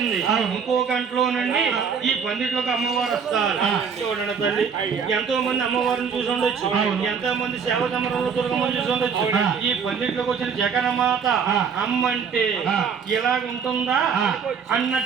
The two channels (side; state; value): left; quieter; 6.4 dB